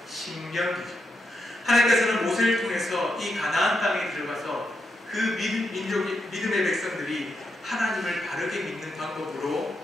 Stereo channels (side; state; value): both; normal; correlation 0.83